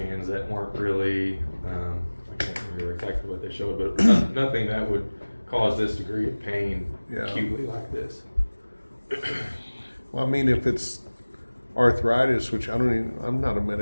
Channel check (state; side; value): inverted; both; correlation -1.00